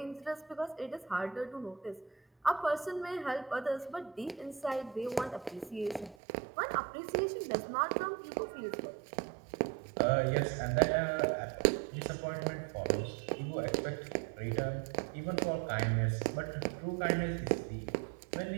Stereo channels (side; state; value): left; drops out; at 6.2 s